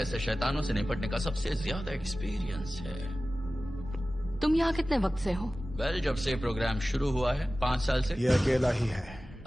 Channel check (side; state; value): both; normal; correlation 0.96